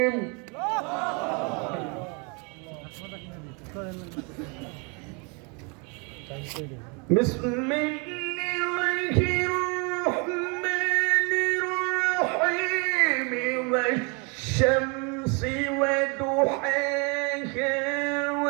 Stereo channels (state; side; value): quieter; left; 33.0 dB